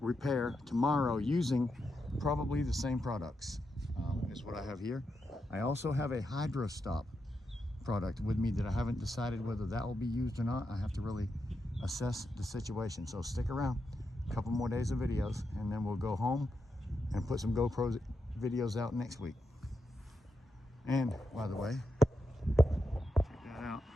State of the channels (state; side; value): normal; both; correlation 0.86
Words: repair tomorrow using probably the same products is what I have here. I also have a hydro stop product with me that I haven't decided whether that will be used or not. I have to really assess the situation. So stick around, a couple more days of videos, and then we'll go home and put some GoPro videos out next week. And by the way, check that out.